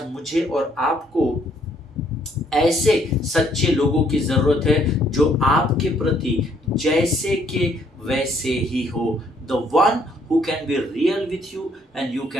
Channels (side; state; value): both; normal; correlation 0.67